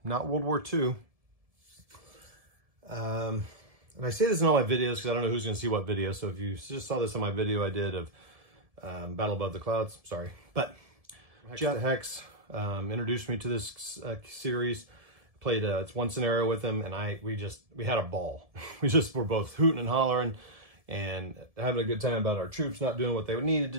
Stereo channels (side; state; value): left; late; 1.7 ms